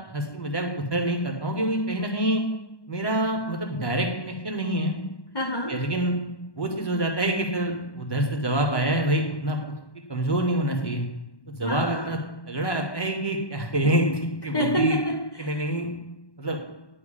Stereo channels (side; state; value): right; late; 1.1 ms